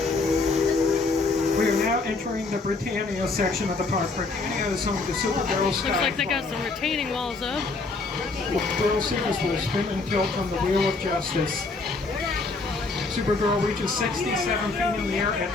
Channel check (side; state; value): right; quieter; 3.7 dB